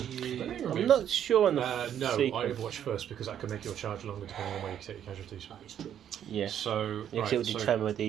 you? I'm not sure on the No, I sequence. Overwatch first because that can make your charge longer depending on where you take your casualties. That is true. Yeah. So, Because it will determine whether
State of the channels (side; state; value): left; quieter; 9.8 dB